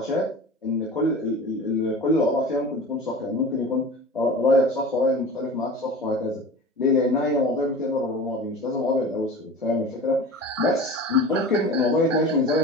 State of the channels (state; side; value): normal; both; correlation 0.36